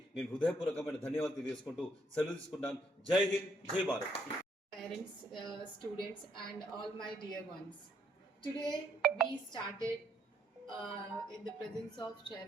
నేను హృదయపూర్వకమైన ధన్యవాదాలు తెలియజేసుకుంటూ సెలవు తీసుకుంటాను. జై హింద్, జై Bharat. Parents, students, and all my dear ones. Today we started in the presence of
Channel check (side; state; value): both; normal; correlation 0.71